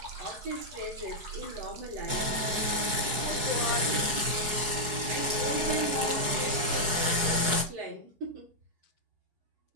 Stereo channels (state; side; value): late; left; 4.7 ms